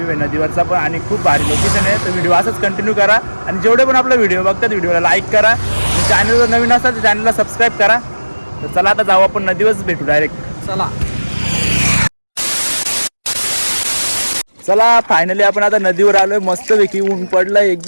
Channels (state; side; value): inverted; both; correlation -1.00